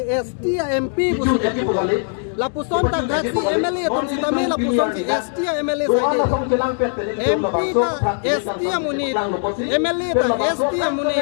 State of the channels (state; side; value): silent; right; 65 dB below the other